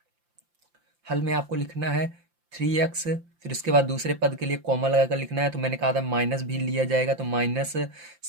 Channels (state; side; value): late; left; 5.8 ms